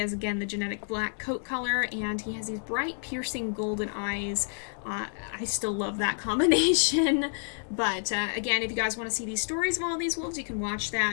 again, the genetic black coat color, and he has these bright, piercing golden eyes. I still love that combination, but again, if you guys want to see these stories of all these wolves, you can watch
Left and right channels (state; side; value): silent; right; digital silence